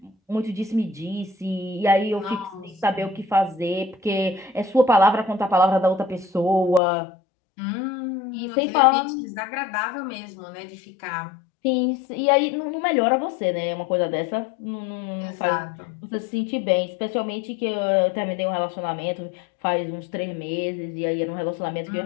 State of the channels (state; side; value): drops out; right; at 6.8 s